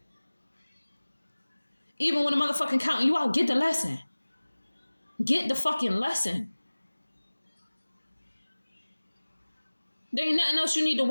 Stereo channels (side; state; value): both; inverted; correlation -1.00